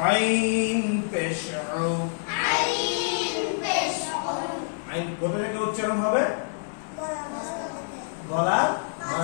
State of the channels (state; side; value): silent; right; 60 dB below the other